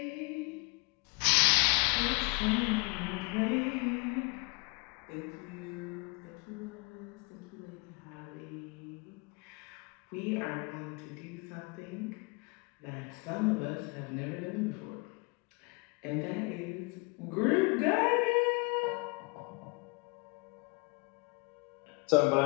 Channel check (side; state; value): right; quieter; 29.4 dB